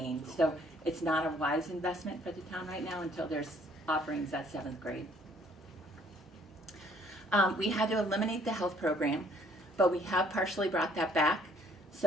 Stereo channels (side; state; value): both; normal; correlation 0.61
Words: So it's not a wise investment for the town right now until there's offerings at 7th grade. We had to eliminate the health program, but we have partially brought that back.